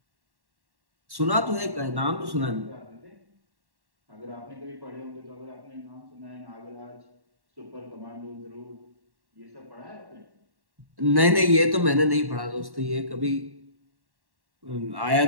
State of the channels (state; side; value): late; left; 1.1 ms